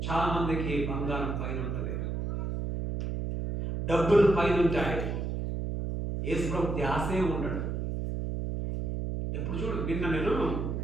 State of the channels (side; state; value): right; noise; hum, 2 dB below the sound